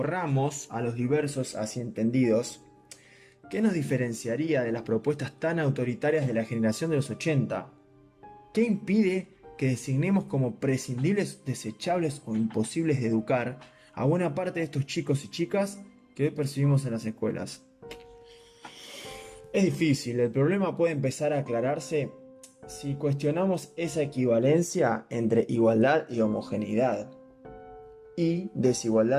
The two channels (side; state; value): both; identical; correlation 1.00